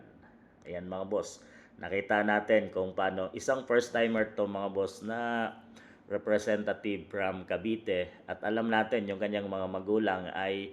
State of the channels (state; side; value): identical; both; correlation 1.00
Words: Ayan mga boss, nakita natin kung paano isang first timer to mga boss na representative from Cavite at alam natin yung kanyang mga magulang ay